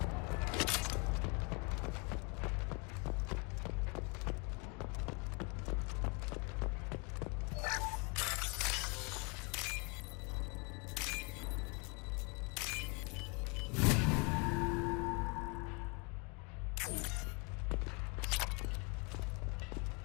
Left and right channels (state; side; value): quieter; right; 31.1 dB